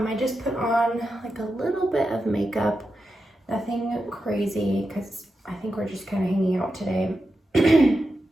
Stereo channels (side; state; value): both; normal; correlation 0.89